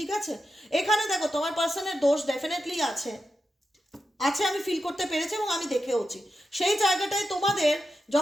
আছে। এখানে দেখো তোমার পার্সনের দোষ ডেফিনেটলি আছে, আছে, আমি ফিল করতে পেরেছি এবং আমি দেখেওছি। সেই জায়গাটায় তোমাদের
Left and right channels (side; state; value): both; normal; correlation 0.89